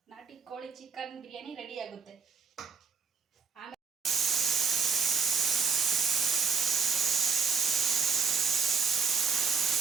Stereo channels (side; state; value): left; quieter; 5.2 dB